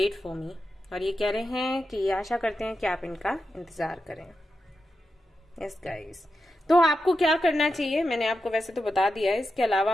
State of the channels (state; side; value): normal; both; correlation 0.89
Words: for me, और ये कह रहे हैं कि ये आशा करते हैं कि आप इनका इंतजार करें। यस गाइस, तो आपको क्या करना चाहिए मैंने आपको वैसे तो बता दिया है, इसके अलावा